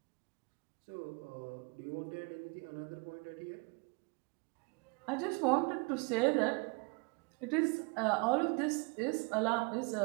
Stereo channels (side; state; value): left; quieter; 31.1 dB